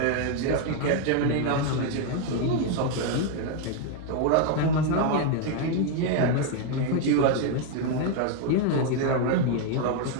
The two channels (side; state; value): both; different; correlation 0.01